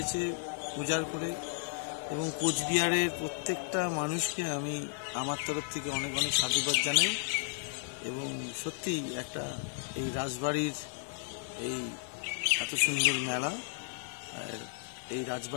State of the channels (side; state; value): right; silent; 55 dB below the other